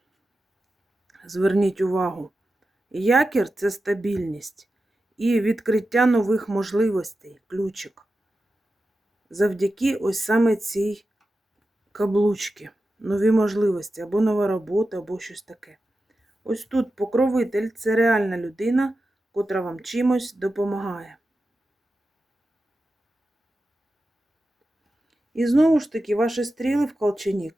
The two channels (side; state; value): both; normal; correlation 0.92